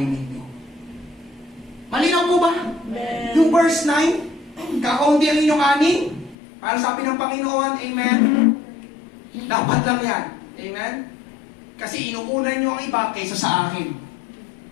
ninyo. Malinaw po ba? Yung verse 9, kakaunti ang inyong ani. Para sabi ng Panginoon, amen. Dapat lang yan. Amen. Kasi inuunan nyo ang iba kaysa sa akin.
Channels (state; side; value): drops out; right; at 6.4 s